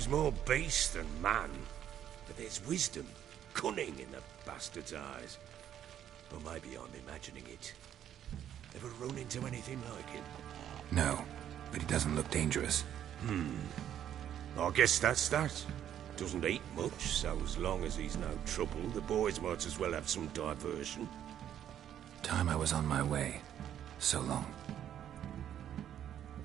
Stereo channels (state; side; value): quieter; left; 10.4 dB